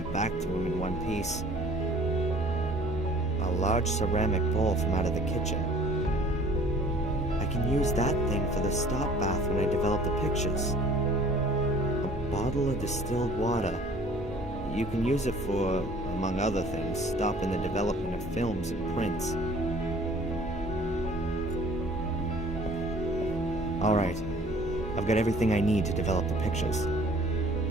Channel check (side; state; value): both; normal; correlation 0.52